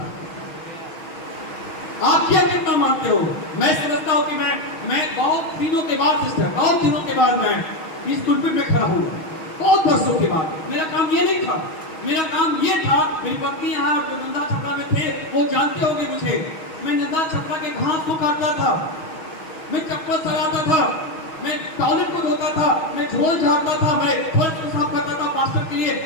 आप क्या कितना मानते हो? मैं समझता हूं कि मैं बहुत दिनों के बाद सिस्टर, बहुत दिनों के बाद मैं इस पुलपिट में खड़ा हुआ, बहुत वर्षों के बाद। मेरा काम ये नहीं था, मेरा काम ये था, मेरी पत्नी यहाँ जो नंदा छपरा में थे वो जानते होंगे मुझे, मैं नंदा छपरा के घास को काटता था, मैं चप्पल सराता था, मैं टॉयलेट को धोता था, मैं झोल झाड़ता था, मैं फर्श को साफ करता था, पास्टर के लिए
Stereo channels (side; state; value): right; late; 6.3 ms